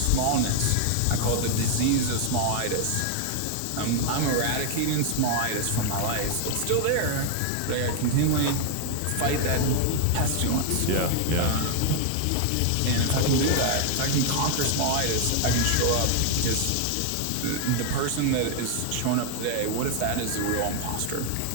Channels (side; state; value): both; different; correlation 0.00